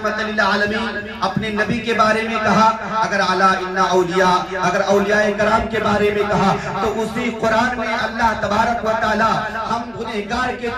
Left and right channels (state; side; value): identical; both; correlation 1.00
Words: للعالمین، اپنے نبی کے بارے میں کہا. اگر اعلیٰ ان اولیاء، اگر اولیاء کرام کے بارے میں کہا، تو اسی قرآن میں اللہ تبارک و تعالی ہم گنہگار کے